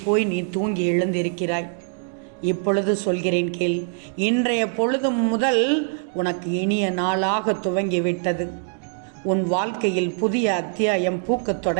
போய் நீ தூங்கி எழுந்திருக்கிறாய். இப்பொழுது சொல்கிறேன் கேள். இன்றைய பொழுது முதல் உனக்கு இனிய நாளாக துவங்கிவிட்டது. உன் வாழ்க்கையில் புதிய அத்தியாயம் பூக்கத்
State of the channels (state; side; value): silent; left; 55 dB below the other